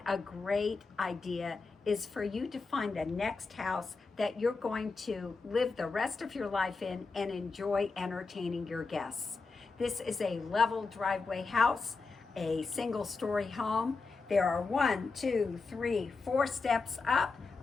a great idea is for you to find the next house that you're going to live the rest of your life in and enjoy entertaining your guests. This is a level driveway house, a single story home. There are 4 steps up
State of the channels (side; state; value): right; quieter; 4.2 dB